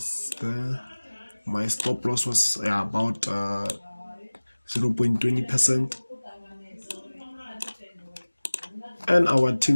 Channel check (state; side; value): inverted; both; correlation -1.00